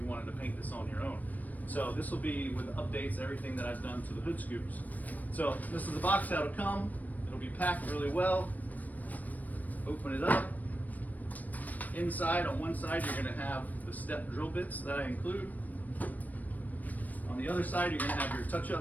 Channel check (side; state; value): right; late; 0.080 ms